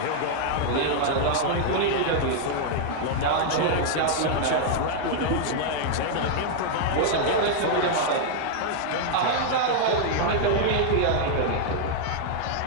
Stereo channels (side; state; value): both; different; correlation -0.01